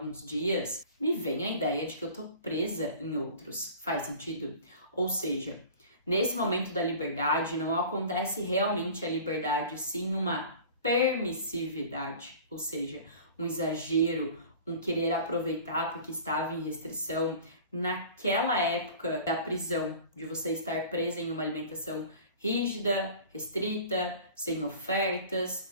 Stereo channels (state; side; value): inverted; both; correlation -0.42